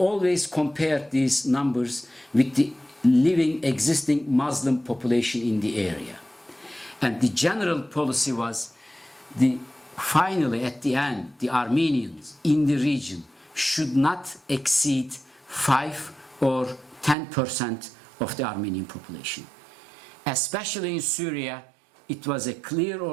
compared these numbers with the living, existing Muslim population in the area. And the general policy was, finally, at the end, the Armenians in the region should not exceed 5 or 10% of the Armenian population. Especially in Syria, it was a clear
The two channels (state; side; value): drops out; left; at 17.2 s